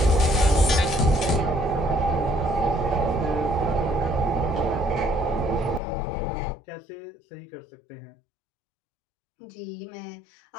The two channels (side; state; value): right; drops out; at 5.8 s